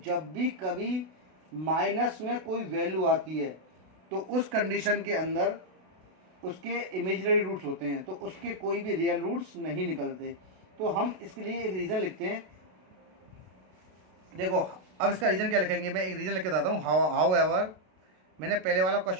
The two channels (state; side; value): late; left; 32 ms